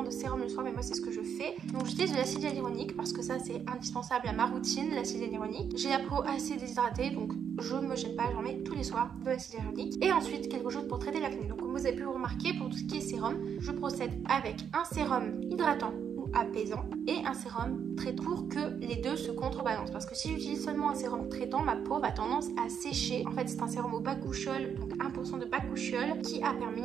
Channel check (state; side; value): quieter; left; 7.8 dB